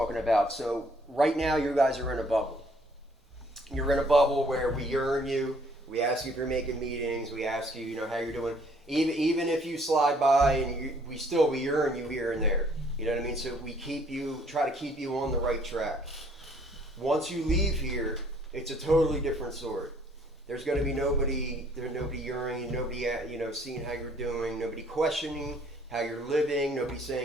about. So right now you guys are in a bubble. You're in a bubble where we yearn you. We ask you if you're making meetings. We ask you, how you're doing. Even if you slide by, and we yearn you here and there. You know what I mean? So we try to keep you on the right track. Once you leave here, it's a totally different story. There's going to be nobody yearning, nobody seeing how you're doing, nobody questioning how you're living, nobody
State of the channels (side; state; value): both; normal; correlation 0.62